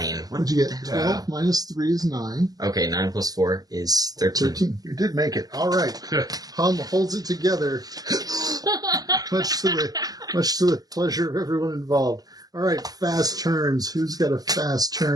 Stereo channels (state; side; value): late; left; 0.18 ms